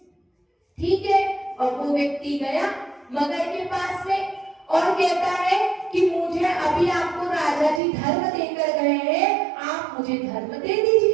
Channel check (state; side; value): drops out; left; at 7.8 s